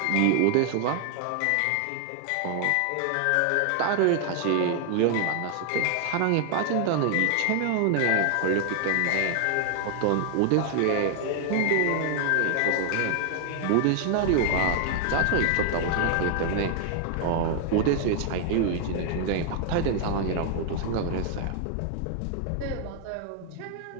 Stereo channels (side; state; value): both; different; correlation 0.00